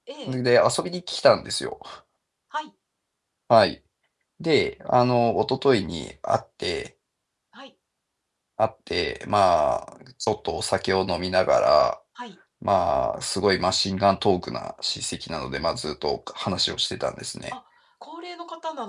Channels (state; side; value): identical; both; correlation 1.00